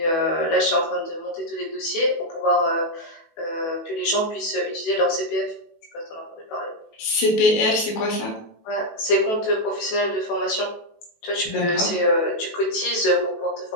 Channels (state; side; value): late; right; 18 ms